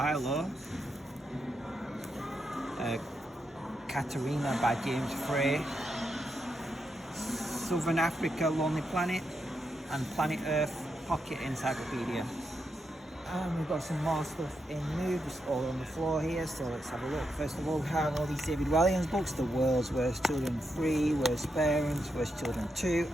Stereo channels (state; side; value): normal; both; correlation 0.84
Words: Katerina by James Frey, Southern Africa Lonely Planet, and Planet Earth Pocket Encyclopedia. And we've got some more stuff in new, just all on the floor here, so let's have a look. First of all, we have all these David Walliams books: The World's Worst Children 3, Worst Parents, Worst Children 2,